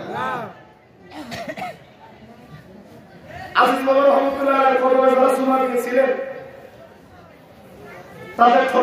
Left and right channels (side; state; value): both; identical; correlation 1.00